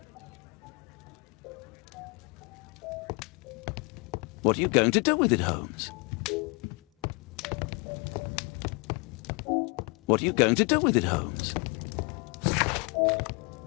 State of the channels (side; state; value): right; quieter; 32.5 dB